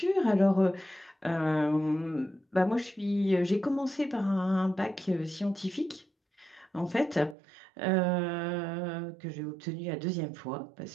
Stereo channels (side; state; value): left; drops out; at 7.4 s